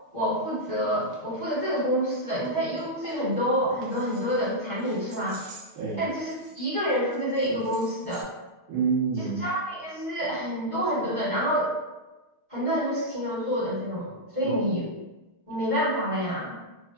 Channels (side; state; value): left; late; 6.4 ms